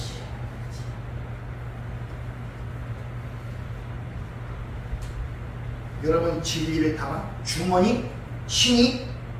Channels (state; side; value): identical; both; correlation 1.00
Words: 여러분 진리를 담아 주머니 신이